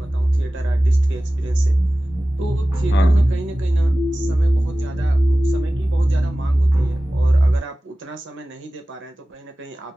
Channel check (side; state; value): both; normal; correlation 0.97